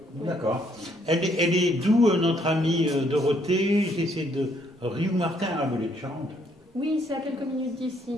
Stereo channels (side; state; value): both; normal; correlation 0.69